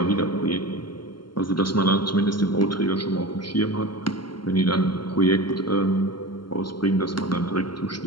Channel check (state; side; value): late; right; 0.72 ms